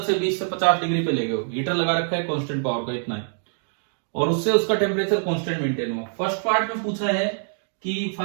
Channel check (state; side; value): silent; left; digital silence